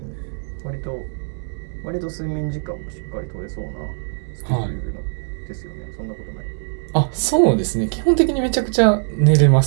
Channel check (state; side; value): silent; left; 64 dB below the other